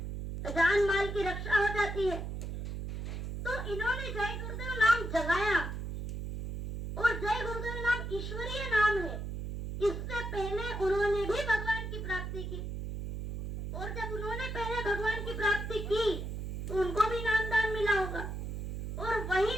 जान माल की रक्षा हो जाती है। तो इन्होंने जय गुरुदेव नाम जगाया और जय गुरुदेव नाम ईश्वरीय नाम है। इससे पहले उन्होंने भी भगवान की प्राप्ति की और जब उन्होंने पहले भगवान की प्राप्ति की तो उनको भी नामदान मिला होगा और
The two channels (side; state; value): right; noise; hum, 5 dB below the sound